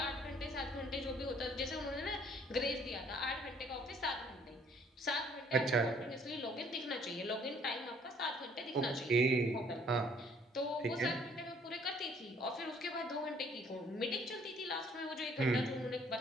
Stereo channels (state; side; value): normal; both; correlation 0.60